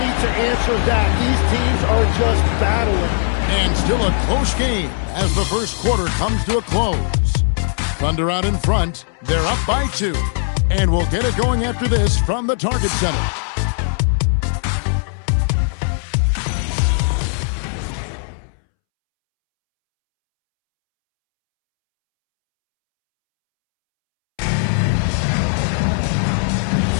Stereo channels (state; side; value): silent; right; 67 dB below the other